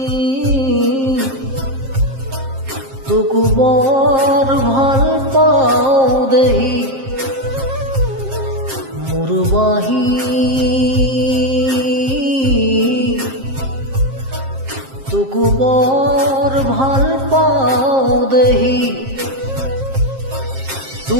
তোকো বৰ ভাল পাওঁ দেহি মোৰ বাহি তোকো বৰ ভাল পাওঁ দেহি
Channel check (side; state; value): left; late; 7.5 ms